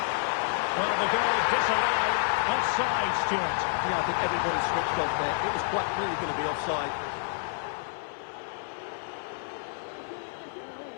Well, the goal disallowed. Offside, Stuart. Yeah, I think everybody switched off there. It was quite clearly going to be offside.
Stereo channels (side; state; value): right; silent; 59 dB below the other